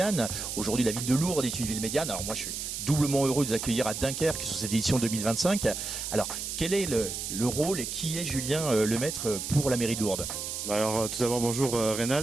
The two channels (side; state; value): right; noise; hiss, 5 dB below the sound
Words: Aujourd'hui la ville de Lourdes est une ville médiane. Alors moi je suis doublement heureux de vous accueillir à Dunkerque sur cette édition 2025. Alors quel est le rôle et qui est Julien Lemaître pour la mairie de Lourdes ? Alors tout d'abord bonjour